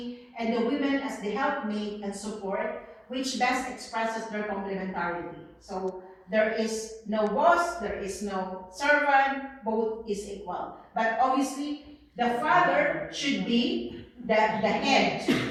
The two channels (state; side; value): identical; both; correlation 1.00